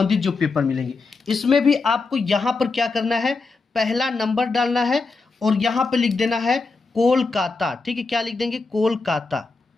जो पेपर मिलेंगे इसमें भी आपको यहाँ पर क्या करना है, पहला नंबर डालना है और यहाँ पे लिख देना है कोलकाता। ठीक है, क्या लिख देंगे, कोलकाता।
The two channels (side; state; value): right; quieter; 4.0 dB